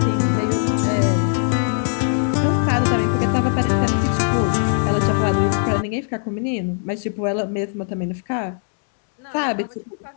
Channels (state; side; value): silent; right; digital silence